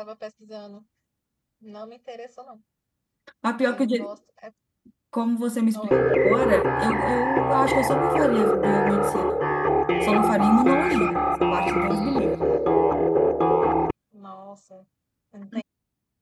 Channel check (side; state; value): both; identical; correlation 1.00